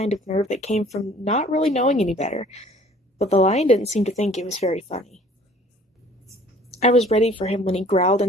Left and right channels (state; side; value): normal; both; correlation 0.53